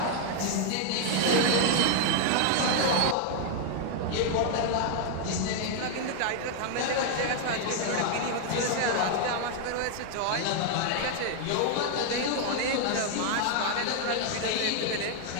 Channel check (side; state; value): both; different; correlation 0.00